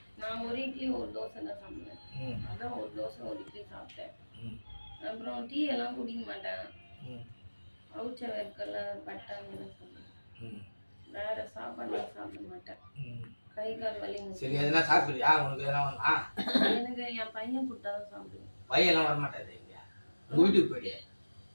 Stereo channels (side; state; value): both; inverted; correlation -1.00